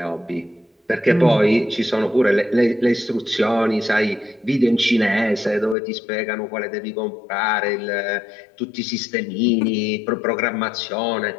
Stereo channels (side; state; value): right; drops out; at 5.8 s